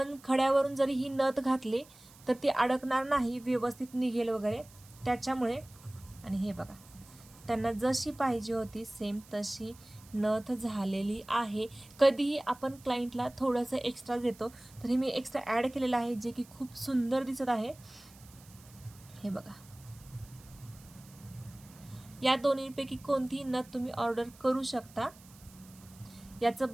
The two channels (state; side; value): noise; right; hiss, 23 dB below the sound